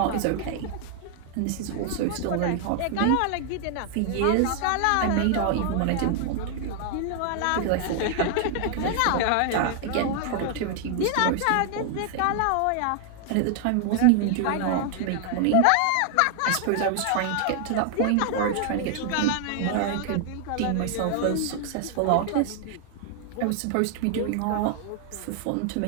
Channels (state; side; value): different; both; correlation 0.00